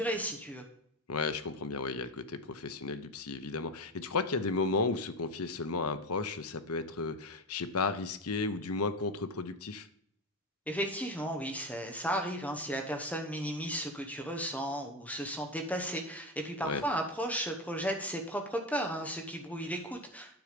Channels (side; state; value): both; normal; correlation 0.18